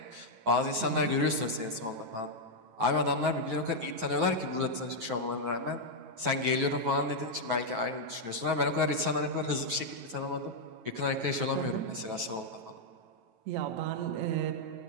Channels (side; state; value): left; late; 9.2 ms